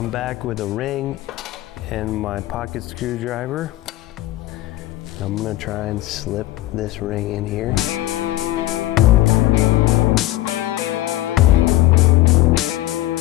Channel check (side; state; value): right; quieter; 16.3 dB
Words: back with a ring and my pocket screwdriver. I'm gonna try and slip this ring in here.